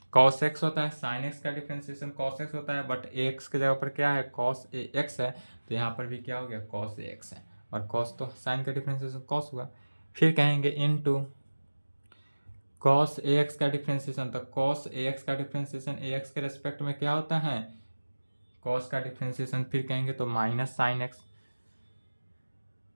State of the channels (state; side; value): inverted; both; correlation -1.00